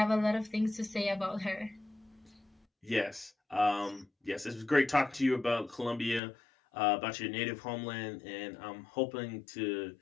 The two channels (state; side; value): drops out; right; at 6.2 s